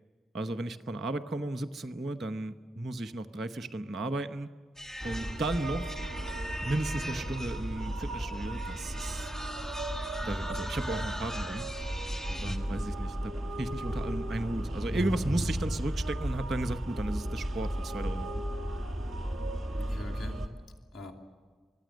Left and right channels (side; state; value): both; normal; correlation 0.87